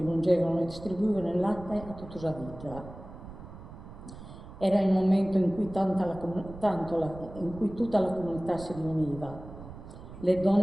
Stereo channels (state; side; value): noise; right; rumble, 14 dB below the sound